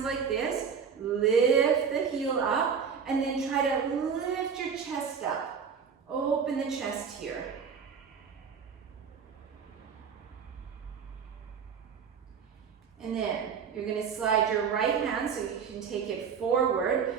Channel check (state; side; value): quieter; left; 6.6 dB